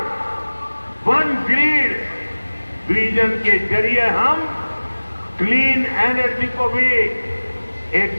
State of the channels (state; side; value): inverted; both; correlation -1.00